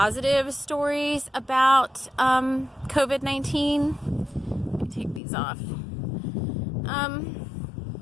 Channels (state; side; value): drops out; right; at 5.2 s